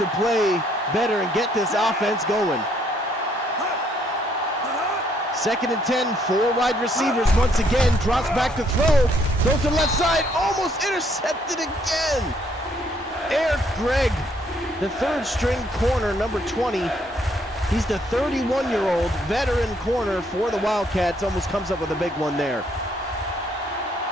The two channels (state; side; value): normal; both; correlation 0.68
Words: play better and get this offense going. 2nd and 10, 4 wide receivers once again, drops back to throw, goes to the left side, almost intercepted again. Eric Gregg, the 3rd string corner, number 20. He's the 31-year-old veteran corner for the Wildcats. Almost comes up with a big one there.